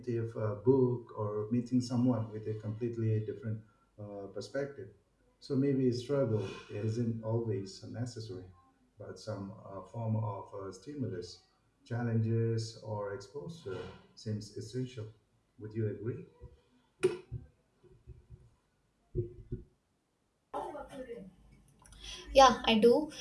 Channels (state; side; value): identical; both; correlation 1.00